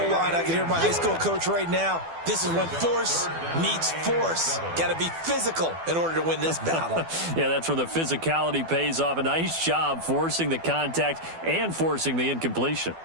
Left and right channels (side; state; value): left; late; 12 ms